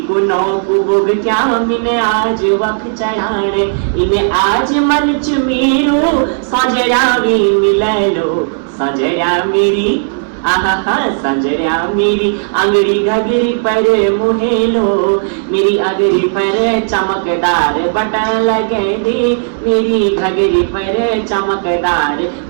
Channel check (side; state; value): left; silent; digital silence